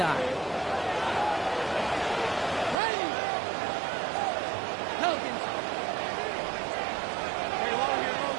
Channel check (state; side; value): drops out; left; at 2.8 s